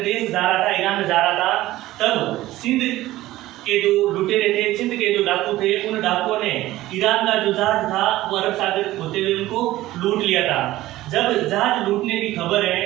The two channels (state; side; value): quieter; left; 16.2 dB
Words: देश जा रहा था, ईरान में जा रहा था। तब सिंध के जो लुटेरे थे, सिंध के जो डाकू थे, उन डाकुओं ने ईरान का जो जहाज था वो अरब सागर होते हुए उनको लूट लिया था। जब जहाज लूटने की खबर है,